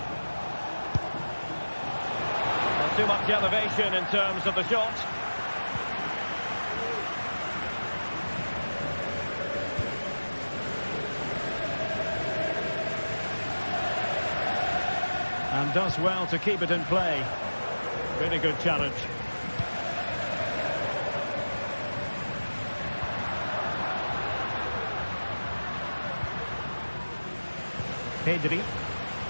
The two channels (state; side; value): inverted; both; correlation -1.00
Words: Not too much elevation in terms of the shot. And does well to keep it in play. Really good challenge. Pedri.